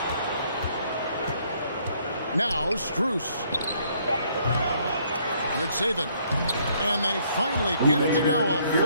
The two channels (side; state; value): both; inverted; correlation -0.66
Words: Now Strus. Yurtseven. And they finally get it to go. A